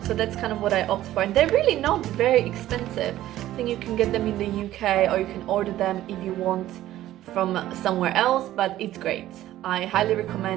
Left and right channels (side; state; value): left; quieter; 14.1 dB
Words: So that's kind of what I opt for, and they're really not very expensive. I think you can get them in the UK or you can order them if you want from somewhere else, but it's great. I highly